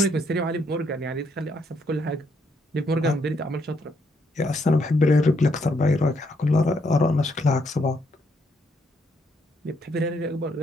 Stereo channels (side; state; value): both; normal; correlation 0.74